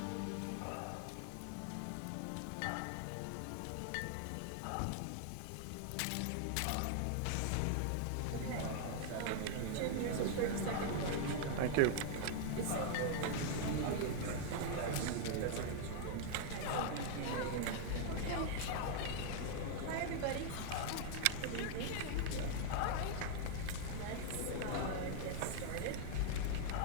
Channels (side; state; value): both; different; correlation 0.00